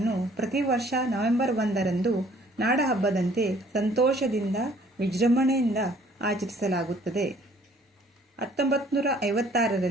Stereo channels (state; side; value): normal; both; correlation 0.58